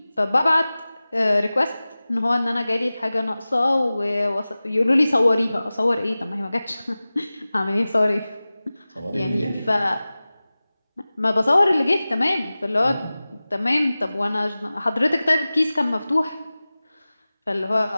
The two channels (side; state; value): both; inverted; correlation -0.97